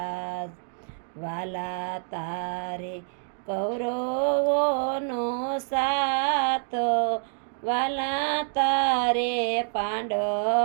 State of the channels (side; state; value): left; silent; digital silence